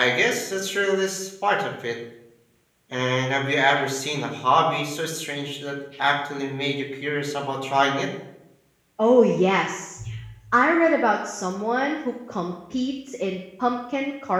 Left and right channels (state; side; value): identical; both; correlation 1.00